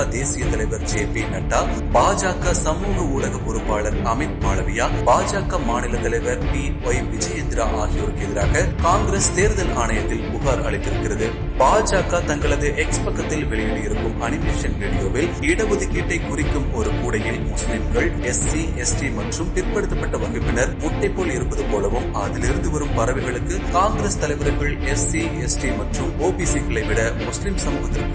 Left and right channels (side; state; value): both; identical; correlation 1.00